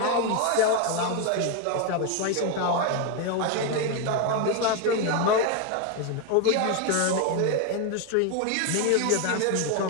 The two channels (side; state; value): both; different; correlation 0.02